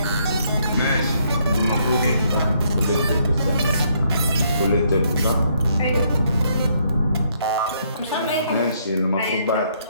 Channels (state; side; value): inverted; both; correlation -0.70